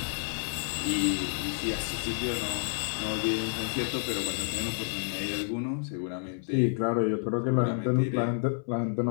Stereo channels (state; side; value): silent; right; 58 dB below the other